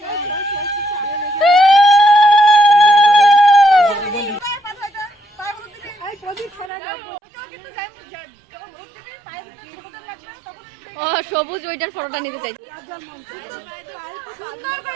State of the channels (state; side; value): drops out; left; at 6.7 s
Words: ও সবুজ ওইটার ফটোটা নিতে চাই।